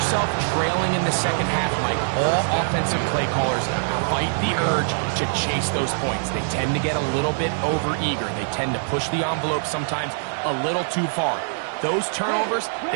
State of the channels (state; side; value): silent; left; digital silence